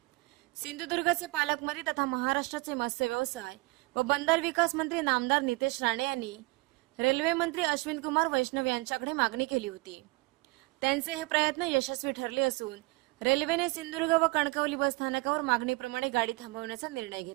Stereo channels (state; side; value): quieter; left; 24.6 dB